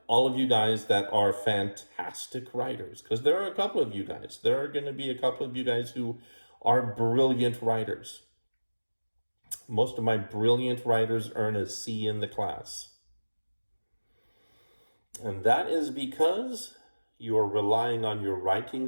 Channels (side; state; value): both; inverted; correlation -1.00